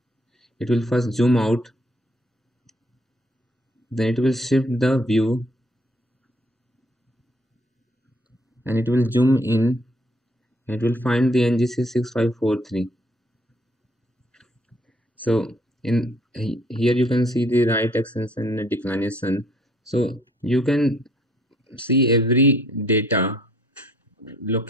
it will first zoom out, then it will shift the view, and it will zoom in, and it will find the NGC 6543. So in here you can see the right extension and declination. So you can see every data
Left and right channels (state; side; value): normal; both; correlation 0.62